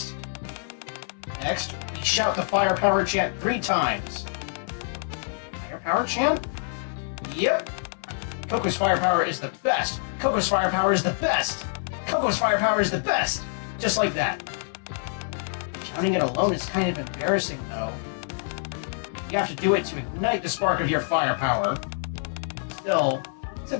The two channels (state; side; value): silent; right; 61 dB below the other